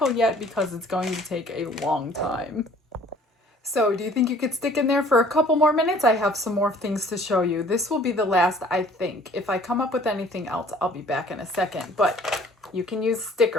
yet because it's going to take a long time. So do you think you could stick in there for a couple more minutes? I have some more things to show you. This will be the last, I think. If I come up with anything else, I'll be back in a second. But you can use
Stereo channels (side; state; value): both; normal; correlation 0.54